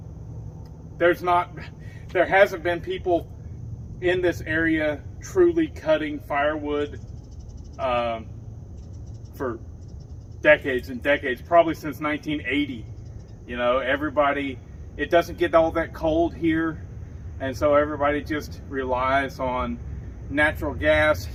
there hasn't been people in this area truly cutting firewood for decades and decades, probably since 1980. You know, it doesn't get all that cold here, and so everybody just relies on natural gas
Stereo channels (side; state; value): both; identical; correlation 1.00